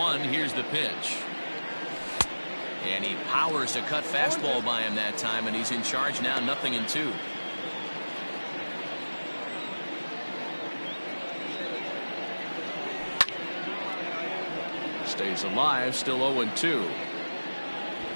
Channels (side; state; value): both; inverted; correlation -1.00